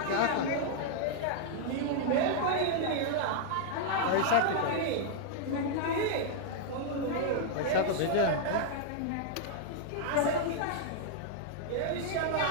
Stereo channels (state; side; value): different; both; correlation -0.01